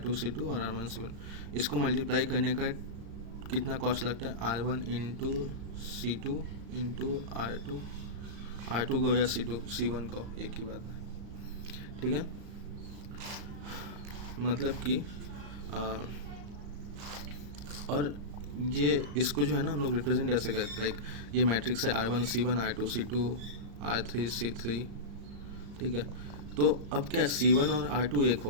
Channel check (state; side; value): late; left; 35 ms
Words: C2 और R1 C1, इसको मल्टीप्लाई करने का कितना कॉस्ट लगता है, R1 into C2 into R2 को या C1 को, एक ही बात है, ठीक है। मतलब कि और ये इसको जो है ना हम लोग रिप्रेजेंट ऐसे करते हैं, लाइक ये मैट्रिक्स है R1 C1 R2 C2 R3 C3, ठीक है। तो अब क्या C1 और R2 एक